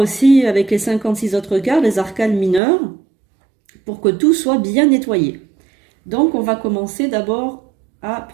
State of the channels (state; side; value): drops out; left; at 2.6 s